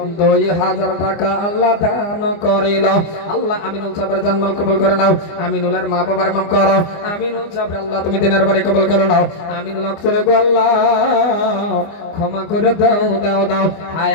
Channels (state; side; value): late; right; 24 ms